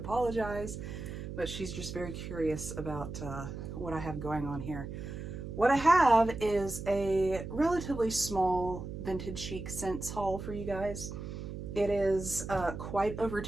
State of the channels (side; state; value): right; noise; hum, 8 dB below the sound